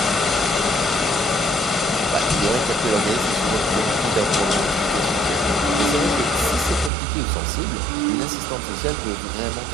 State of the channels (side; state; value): left; drops out; at 6.9 s